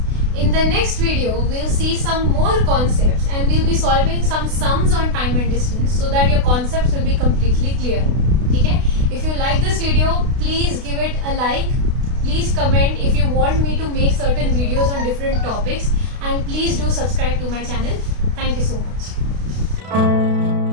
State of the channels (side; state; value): left; late; 32 ms